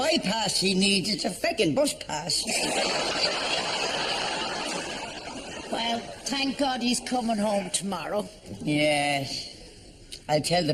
he needs, it's a feckin' bus pass. Well, thank God he's coming home tomorrow. Yes. I'll tell the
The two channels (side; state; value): both; identical; correlation 1.00